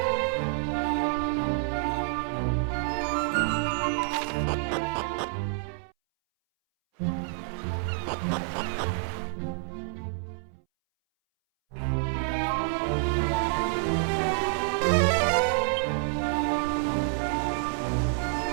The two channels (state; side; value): silent; left; 59 dB below the other